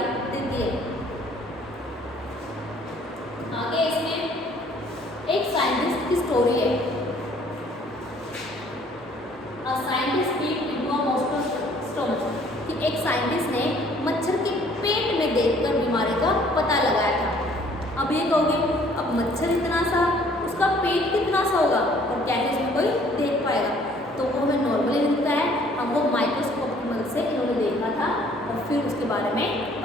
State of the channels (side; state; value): both; normal; correlation 0.58